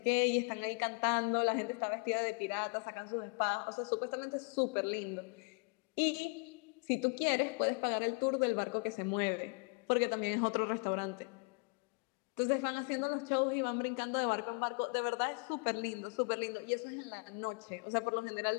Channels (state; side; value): quieter; right; 35.7 dB